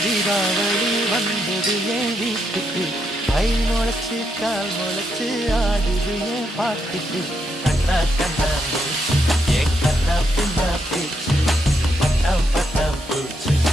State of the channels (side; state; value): both; normal; correlation 0.79